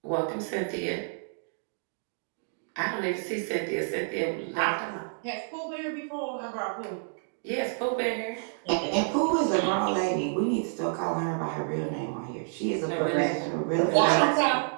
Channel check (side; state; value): left; silent; digital silence